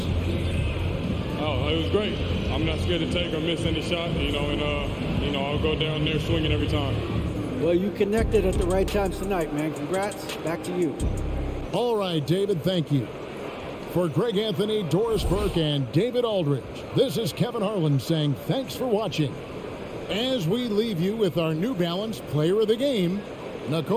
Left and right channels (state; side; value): identical; both; correlation 1.00